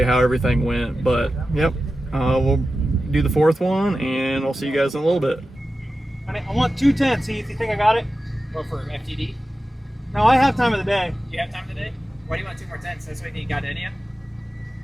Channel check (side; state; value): both; normal; correlation 0.93